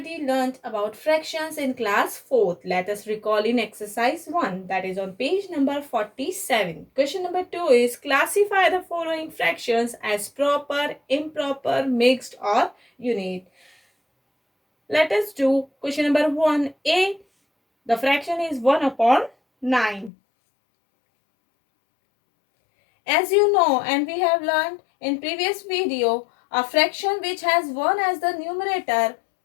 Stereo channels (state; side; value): drops out; right; at 20.1 s